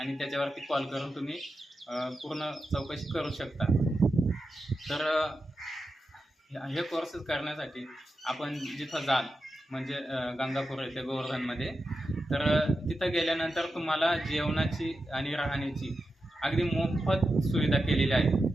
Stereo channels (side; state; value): both; normal; correlation 0.90